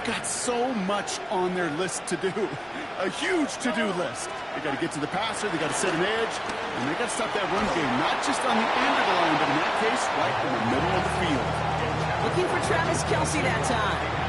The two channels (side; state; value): both; identical; correlation 1.00